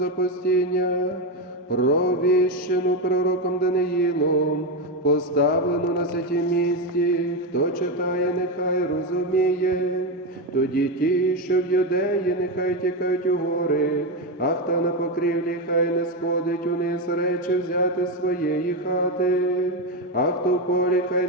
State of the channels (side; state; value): both; normal; correlation 0.11